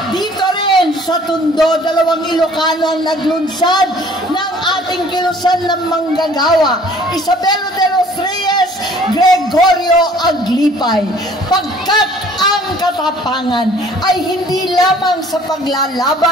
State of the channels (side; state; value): both; normal; correlation 0.54